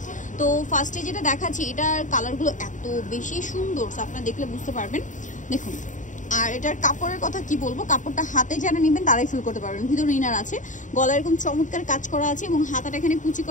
তো ফার্স্টে যেটা দেখাচ্ছি, এটার কালারগুলো এত বেশি সুন্দর, আপনারা দেখলে বুঝতে পারবেন। দেখুন, আর এটার কাপড়ের কথা কি বলবো, কাপড়টা হাতে যারা নেবেন তারাই ফিল করতে পারবেন। ভিতরে ইনার আছে, গলায় এরকম চমৎকার কাজ করা আছে এবং হাতাটা এখানে কুচি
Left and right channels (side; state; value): right; late; 0.36 ms